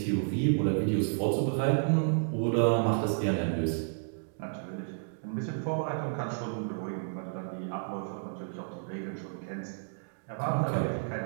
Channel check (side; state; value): left; silent; digital silence